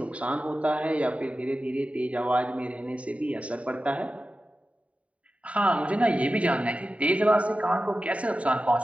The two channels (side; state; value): left; late; 0.065 ms